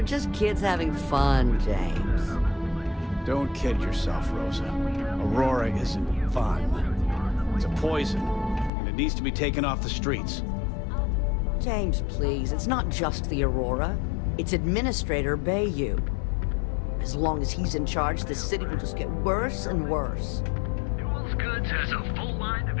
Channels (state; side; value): drops out; right; at 8.7 s